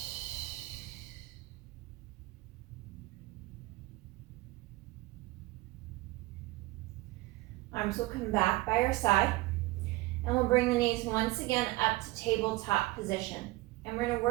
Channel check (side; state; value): left; quieter; 20.0 dB